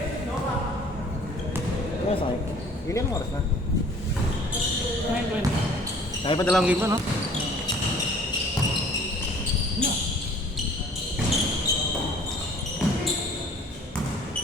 mo sa akin. Ilan oras na? 9:20. Kaya pa dalawang game pa, no? No.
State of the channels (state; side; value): normal; both; correlation 0.52